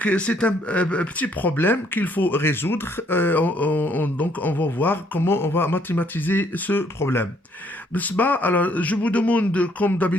c'est un petit problème qu'il faut résoudre. Donc, on va voir comment on va mathématiser ce problème. Alors, je vous demande, comme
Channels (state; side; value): normal; both; correlation 0.66